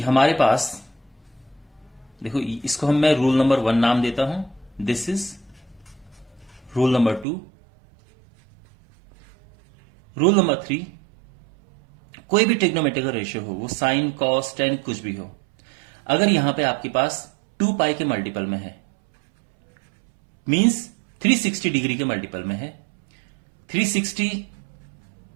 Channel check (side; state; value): left; drops out; at 7.2 s